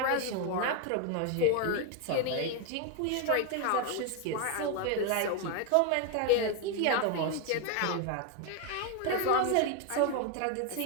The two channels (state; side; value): different; both; correlation 0.01